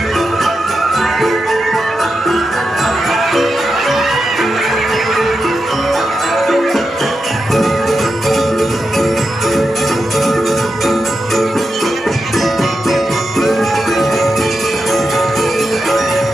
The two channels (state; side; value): normal; both; correlation 0.88